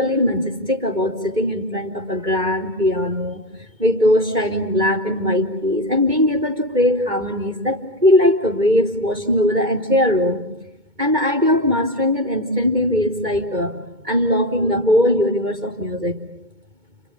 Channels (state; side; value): late; left; 2.2 ms